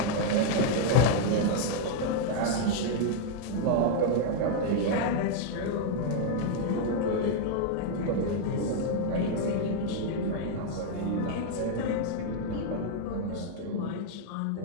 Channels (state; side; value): different; both; correlation -0.01